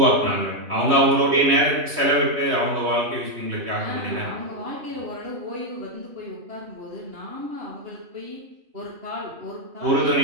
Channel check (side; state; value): left; late; 3.2 ms